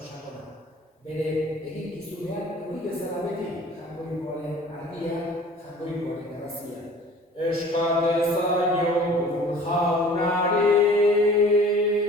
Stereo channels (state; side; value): normal; both; correlation 0.47